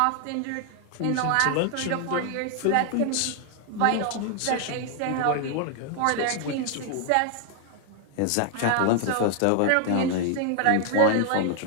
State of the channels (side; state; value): both; different; correlation 0.00